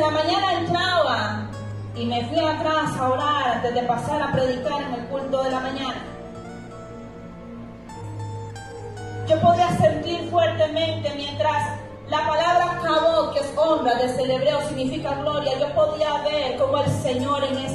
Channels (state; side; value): identical; both; correlation 1.00